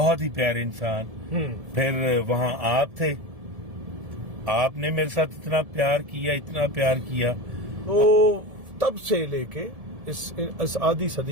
ہی پیارے انسان. پھر وہاں آپ تھے، آپ نے میرے ساتھ اتنا پیار کیا. تو تب سے لے کے اس آدھی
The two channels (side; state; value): left; late; 1.7 ms